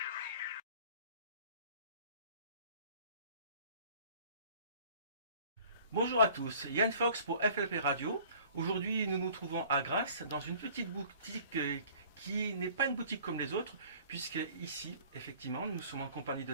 Bonjour à tous, Yann Fox pour FLP Radio. Aujourd'hui, nous nous trouvons à Grasse, dans une petite boutique qui n'est pas une boutique comme les autres, puisque ici, effectivement, nous sommes en compagnie de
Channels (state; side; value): inverted; both; correlation -0.50